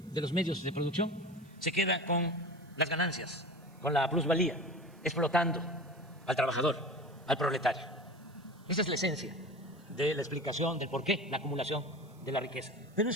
de los medios de producción, se queda con las ganancias, con la plusvalía, explotando al trabajador, al proletario. Esa es la esencia de la explicación del por qué la acumulación de la riqueza. Pero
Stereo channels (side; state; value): right; noise; hiss, 30 dB below the sound